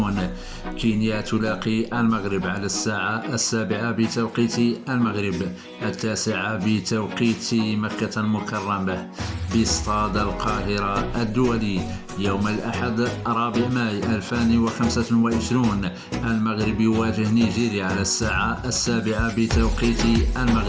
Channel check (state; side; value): identical; both; correlation 1.00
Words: كينيا تلاقي المغرب على الساعة 7 بتوقيت المغرب، 9 بتوقيت مكة المكرمة باستاد القاهرة الدولي. يوم الأحد 4 ماي 2025 المغرب يواجه نيجيريا على الساعة 7 بتوقيت